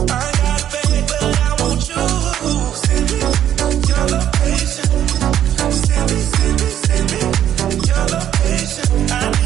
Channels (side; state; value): left; quieter; 10.8 dB